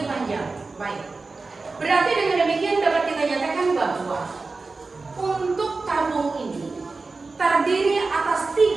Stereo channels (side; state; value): left; quieter; 3.9 dB